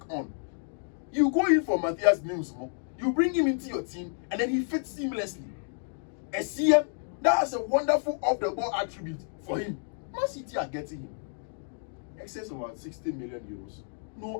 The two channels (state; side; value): silent; right; digital silence